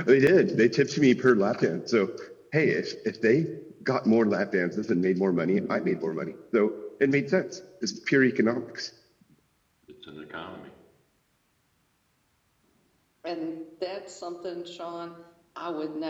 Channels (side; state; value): both; identical; correlation 1.00